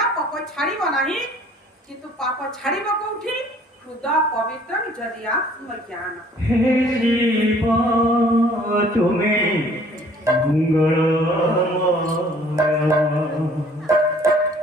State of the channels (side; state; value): both; normal; correlation 0.56